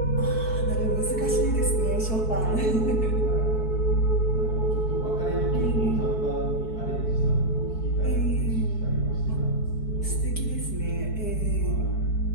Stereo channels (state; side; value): late; right; 4.6 ms